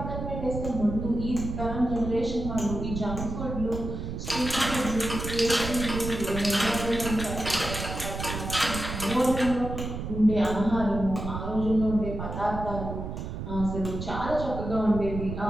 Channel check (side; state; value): right; noise; rumble, 6 dB below the sound